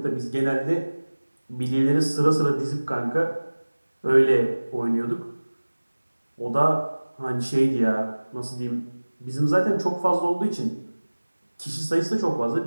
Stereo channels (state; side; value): inverted; both; correlation -1.00